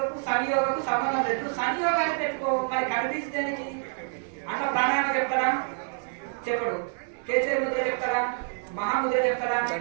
సంయోగకు సంబంధం లేదు. సంయోగాన్ని పెట్టుకో. మరి కనిపించడానికి అంట ప్రాణాయామం చెప్తారా? చెప్పడు. కేసరి ముద్ర చెప్తారా? మహాముద్ర చెప్తారా?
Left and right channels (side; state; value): left; silent; 57 dB below the other